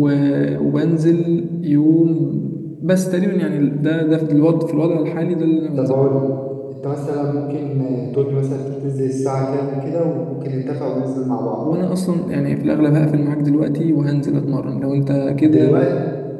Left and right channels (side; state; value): both; identical; correlation 1.00